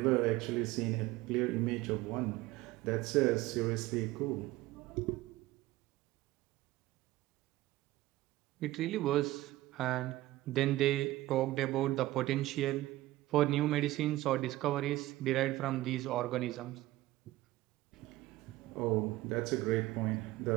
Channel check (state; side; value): quieter; left; 17.1 dB